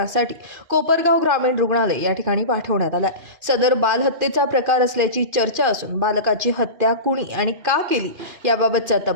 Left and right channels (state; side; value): late; left; 2.5 ms